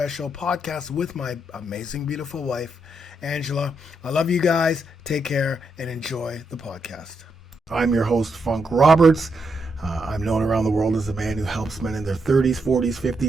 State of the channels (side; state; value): both; normal; correlation 0.81